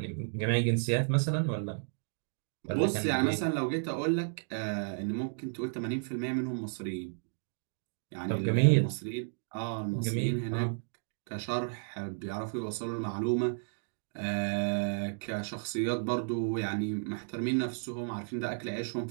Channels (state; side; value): silent; left; digital silence